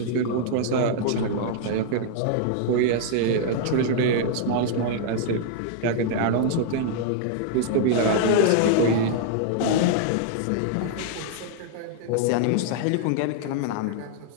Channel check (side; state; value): both; different; correlation -0.01